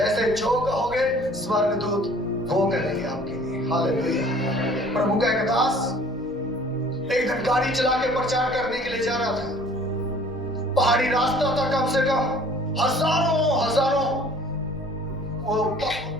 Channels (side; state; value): both; normal; correlation 0.52